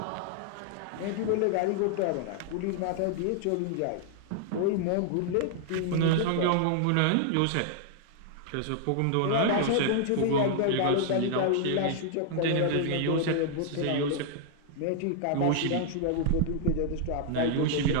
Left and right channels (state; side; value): different; both; correlation -0.01